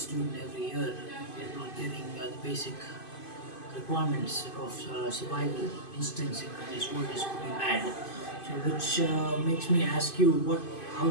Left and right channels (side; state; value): right; late; 2.5 ms